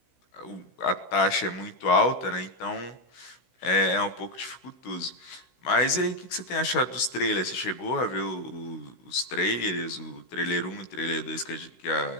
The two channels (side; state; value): right; late; 16 ms